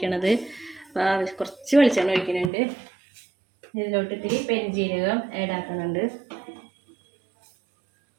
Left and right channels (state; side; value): drops out; left; at 2.5 s